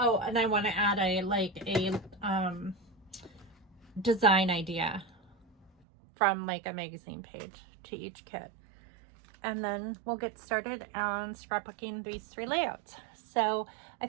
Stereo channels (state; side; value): drops out; left; at 5.7 s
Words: and I want to add a design idea from like a magazine page to each kit. And then we'll get started on scrapbooking these 3 layouts. So I